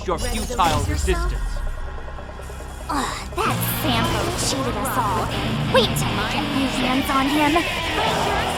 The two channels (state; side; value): identical; both; correlation 1.00